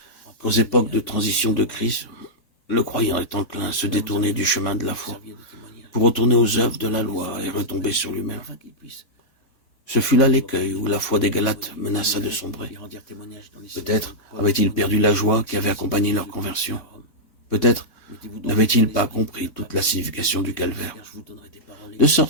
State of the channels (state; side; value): late; right; 3.5 ms